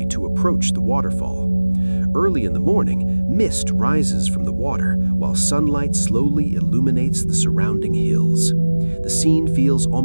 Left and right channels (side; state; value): both; inverted; correlation -1.00